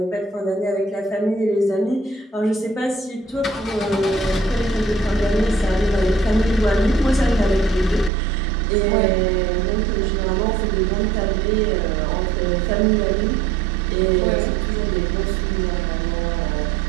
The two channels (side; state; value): left; drops out; at 8.1 s